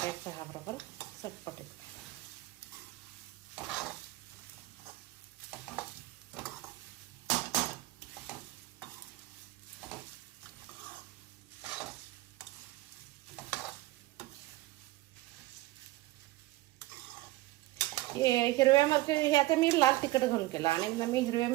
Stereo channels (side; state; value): left; quieter; 18.8 dB